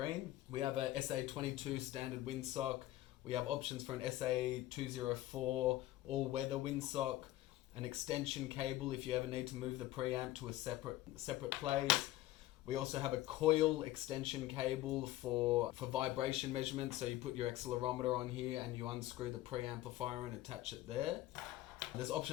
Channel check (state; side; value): quieter; right; 15.7 dB